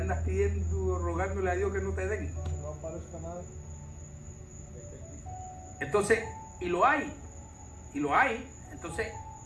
pidiendo, rogándole a Dios que no te den. No aparezca nada. Entonces, y lo hay. Entonces,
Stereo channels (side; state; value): both; identical; correlation 1.00